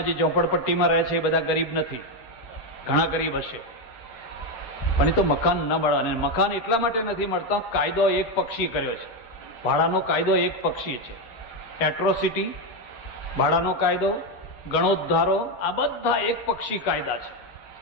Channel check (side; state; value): right; late; 8.9 ms